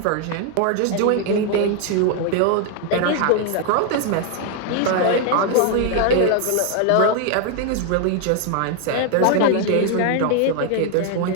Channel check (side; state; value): both; different; correlation 0.00